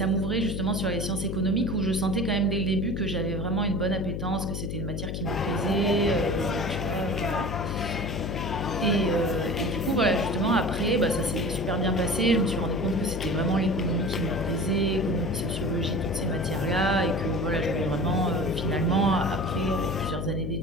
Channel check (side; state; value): left; noise; hum, 3 dB below the sound